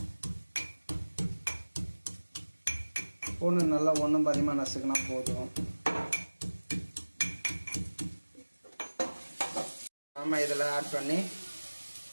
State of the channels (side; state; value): both; inverted; correlation -1.00